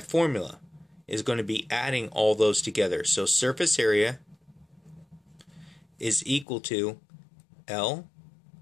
formula is going to be adding all those together. So surface area is equal to L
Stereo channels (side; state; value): right; drops out; at 6.5 s